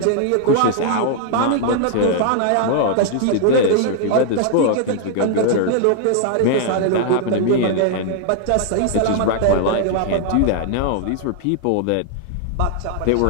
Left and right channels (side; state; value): both; different; correlation -0.01